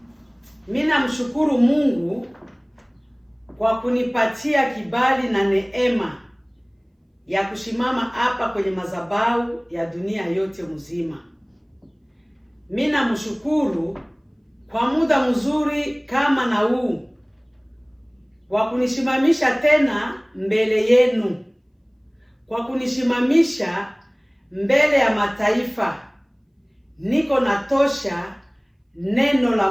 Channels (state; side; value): identical; both; correlation 1.00